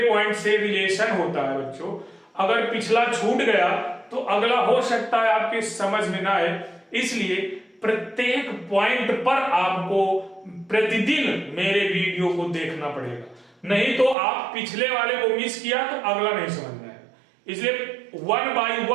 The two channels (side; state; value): left; drops out; at 14.2 s